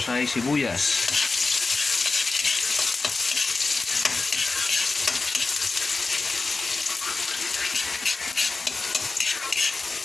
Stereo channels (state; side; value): quieter; right; 3.8 dB